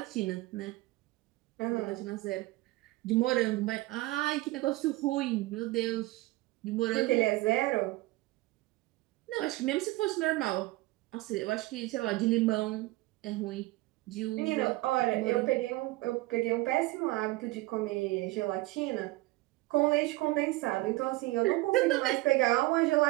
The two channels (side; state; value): left; quieter; 19.9 dB